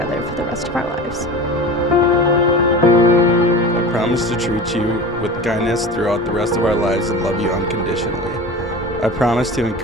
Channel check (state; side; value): normal; both; correlation 0.33